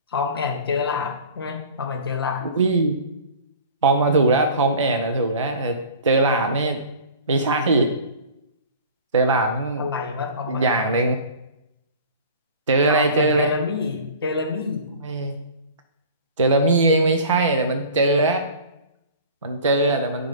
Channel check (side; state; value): both; inverted; correlation -0.42